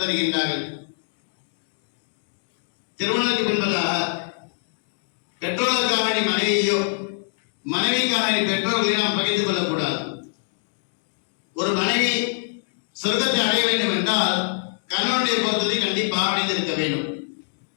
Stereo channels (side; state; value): right; silent; digital silence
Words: தருகின்றார்கள், திருமணத்துக்கு பின்பதாக பெற்றோருக்காக நீ மனைவியோ மனைவிக்காக நீ பெற்றோர்களை நாம் பகிர்ந்து கொள்ளக்கூடாது. ஒரு மனைவி சொர்க்கத்தை அடைய வேண்டும் என்றால் கணவனுடைய பொருத்தத்தை கண்டிப்பாக அடைந்திருக்க வேண்டும்.